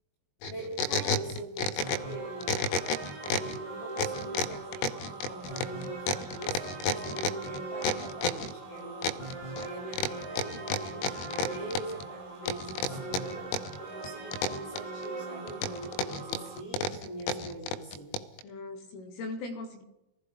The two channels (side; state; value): right; late; 21 ms